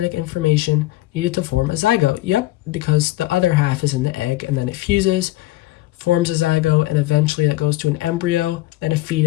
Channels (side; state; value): right; quieter; 17.5 dB